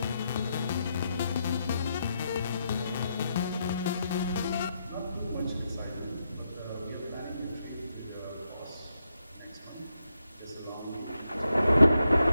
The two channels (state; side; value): inverted; both; correlation -0.83